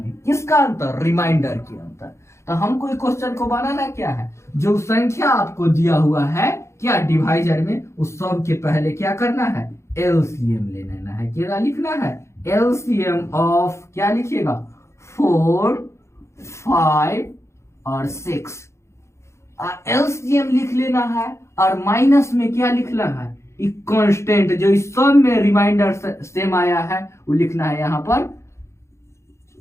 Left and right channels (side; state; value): right; late; 0.13 ms